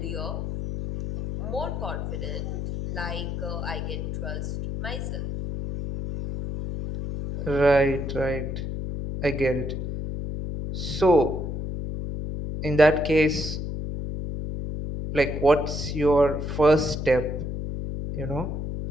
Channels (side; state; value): left; noise; hum, 4 dB below the sound